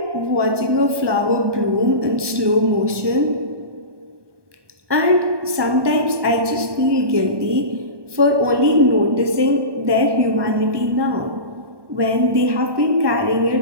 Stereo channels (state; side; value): late; left; 1.2 ms